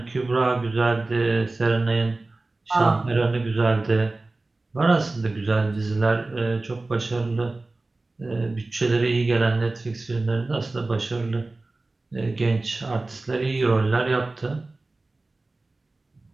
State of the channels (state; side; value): quieter; left; 3.2 dB